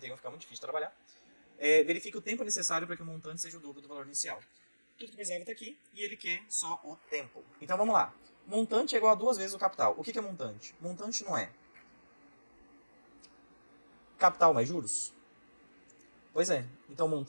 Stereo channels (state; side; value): inverted; both; correlation -1.00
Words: fica muito difícil de trabalhar. Verifique o tempo necessário para que o montante seja o dobro do valor inicial. Tudo que precisava está aqui e ele quer só o tempo. Então vamos lá. Montante é igual a 2 vezes o capital. O que é montante? Montante não é capital mais juros? Pois é. Então